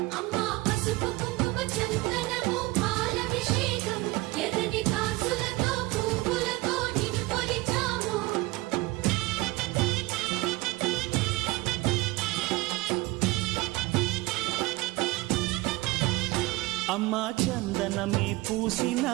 అమ్మా చందనమే పూసిన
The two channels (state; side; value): quieter; left; 21.1 dB